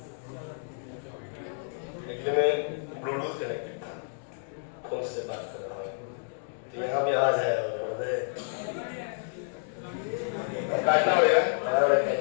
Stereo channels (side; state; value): right; silent; digital silence